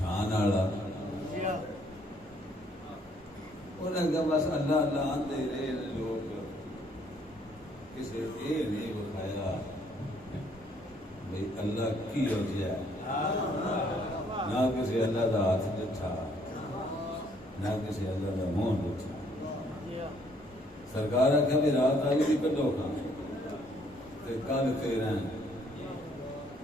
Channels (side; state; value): both; normal; correlation 0.65